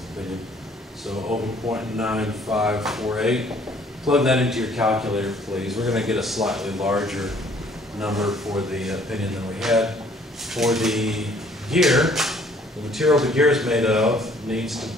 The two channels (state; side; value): normal; both; correlation 0.59